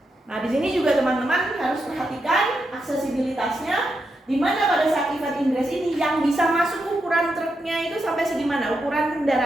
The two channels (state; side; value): normal; both; correlation 0.85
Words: Nah, di sini juga teman-teman harus perhatikan aksesibilitasnya, di mana pada saat event ingress ini yang bisa masuk ukuran truknya itu sampai segimana, ukuran